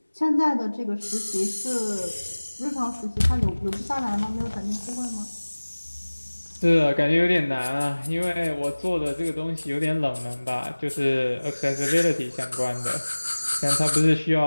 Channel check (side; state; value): both; inverted; correlation -1.00